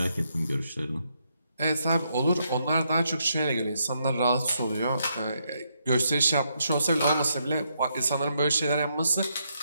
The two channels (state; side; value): inverted; both; correlation -0.78